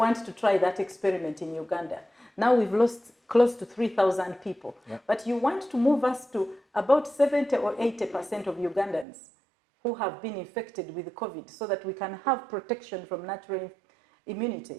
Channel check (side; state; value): left; drops out; at 9.1 s